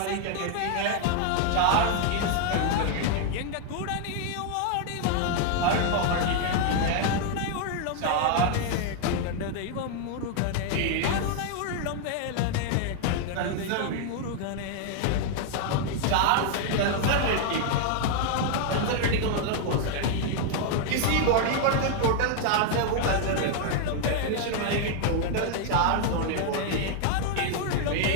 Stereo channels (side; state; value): both; different; correlation 0.00